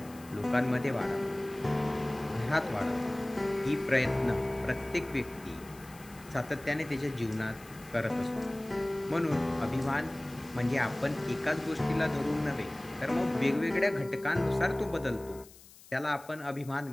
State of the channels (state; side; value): noise; left; hiss, 21 dB below the sound